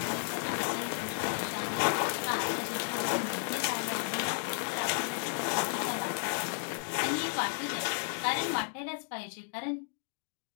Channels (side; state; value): right; silent; 56 dB below the other